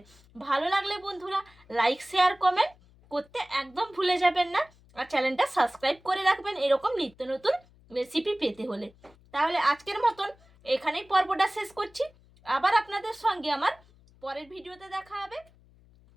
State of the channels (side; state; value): left; noise; hum, 28 dB below the sound